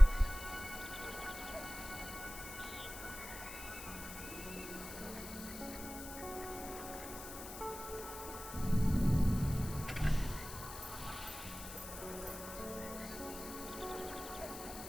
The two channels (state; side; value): noise; left; hiss, 11 dB below the sound